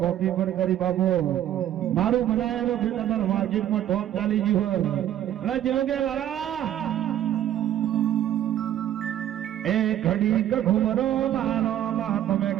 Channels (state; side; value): quieter; left; 11.5 dB